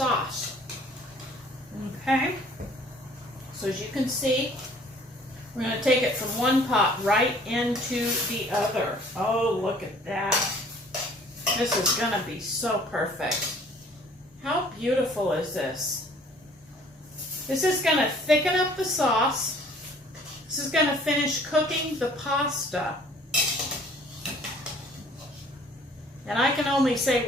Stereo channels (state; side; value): normal; both; correlation 0.55